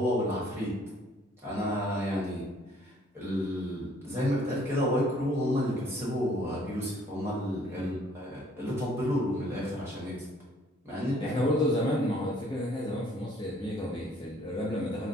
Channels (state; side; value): normal; both; correlation 0.60